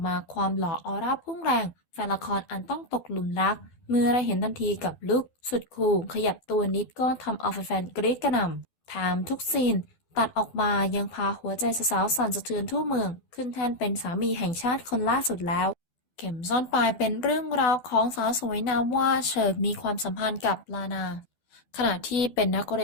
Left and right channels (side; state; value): right; late; 12 ms